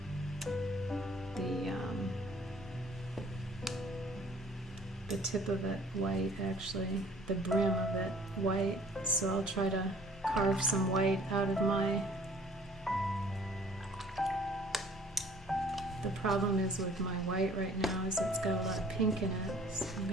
tip of it white, actually, the brim of it white. So I'll try to carve some white out of the problem is with my white right now is it's got a lot of pink in it, so I'm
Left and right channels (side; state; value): both; normal; correlation 0.54